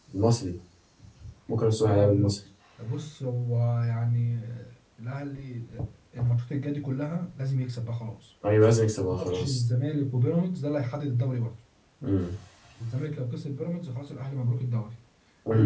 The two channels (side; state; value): both; identical; correlation 1.00